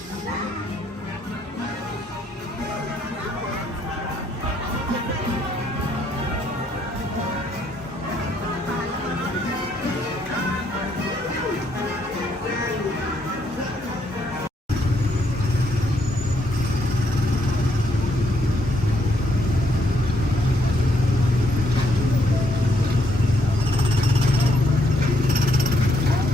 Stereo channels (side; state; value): both; normal; correlation 0.73